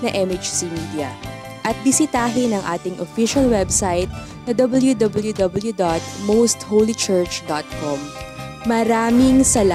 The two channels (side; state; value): both; identical; correlation 1.00